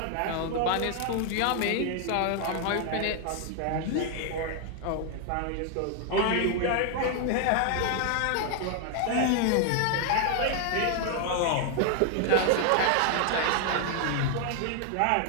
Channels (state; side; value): different; both; correlation 0.00